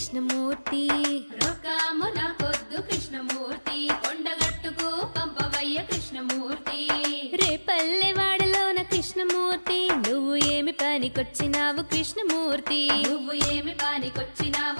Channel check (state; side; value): inverted; both; correlation -1.00